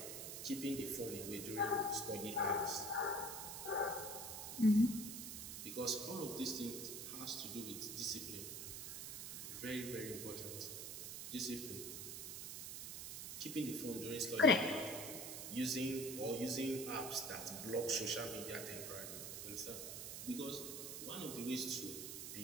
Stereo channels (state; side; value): noise; right; hiss, 7 dB below the sound